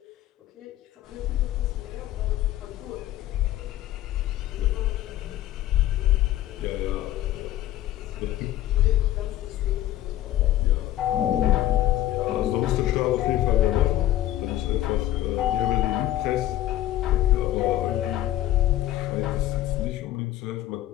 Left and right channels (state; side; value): quieter; right; 13.9 dB